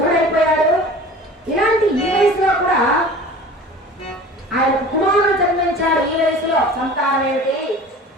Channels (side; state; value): both; normal; correlation 0.41